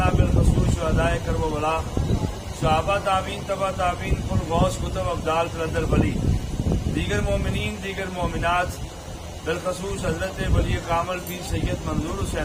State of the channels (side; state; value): both; identical; correlation 1.00